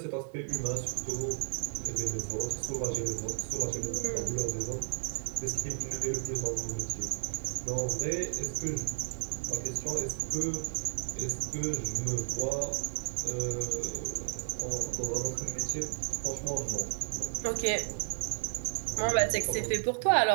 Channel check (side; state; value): left; silent; digital silence